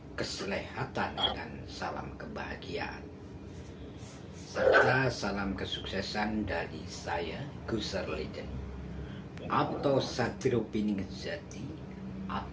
keselehatan, dan salam kebahagiaan. Serta salam kesuksesan dari saya, Gusar Legend, atau Satrio Piningejati,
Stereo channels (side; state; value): both; identical; correlation 1.00